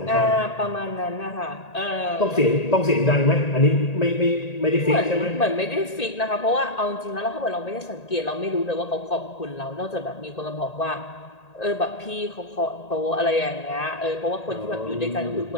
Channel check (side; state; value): right; late; 1.8 ms